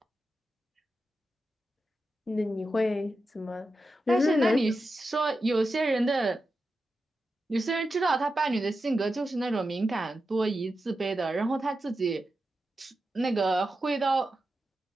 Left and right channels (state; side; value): normal; both; correlation 0.90